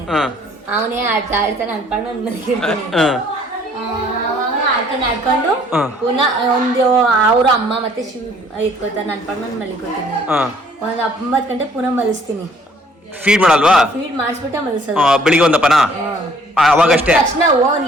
ಅವನೇ ಆಡ್ತಾ ಇರ್ತಾನೆ, ಅನ್ಕೊಂಡು ಒಂದ್ ಮಲಗಿರ್ತಾನೆ. ಆಡ್ಕೊಂಡು ಪುನಃ ಒಂದು ಅವ್ರ ಅಮ್ಮ ಮತ್ತೆ ಶಿವ ಎತ್ಕೋತಾನೆ, ಅನ್ಕೊಂಡು ಒಂದ್ ಮಲಿಕೋತೀನಿ. ಒಂದ್ 9 ಗಂಟೆ ಪುನಃ ಮಲಿಸ್ತೀನಿ. ಫೀಡ್ ಮಾಡಲ್ವಾ? ಫೀಡ್ ಮಾಡಿಸ್ಬಿಟ್ಟೆ ಮಲಸೋದು. ಬೆಳಿಗ್ಗೆ ಒಂದಪ್ಪನ ಅವಾಗಷ್ಟೇ ತಕ್ಷಣ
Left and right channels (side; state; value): both; normal; correlation 0.59